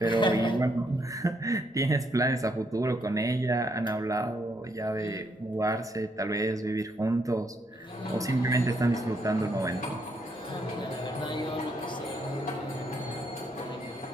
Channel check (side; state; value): both; normal; correlation 0.74